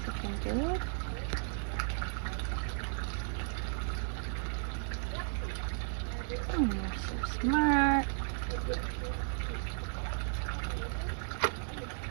looking good. Oh, you're so smart.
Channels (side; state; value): left; silent; 55 dB below the other